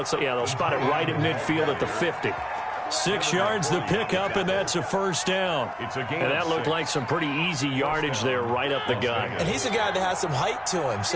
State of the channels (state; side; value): identical; both; correlation 1.00